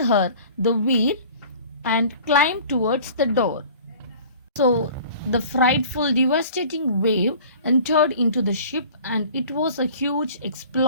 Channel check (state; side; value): inverted; both; correlation -0.45